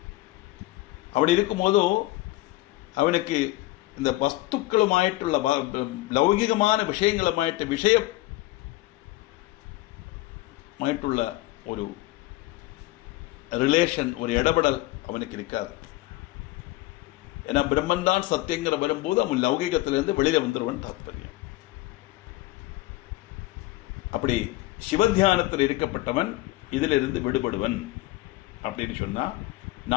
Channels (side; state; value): right; quieter; 18.3 dB